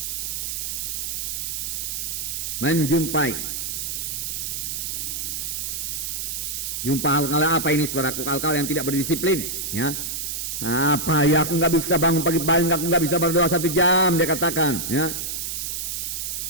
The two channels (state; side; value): noise; right; hiss, 3 dB below the sound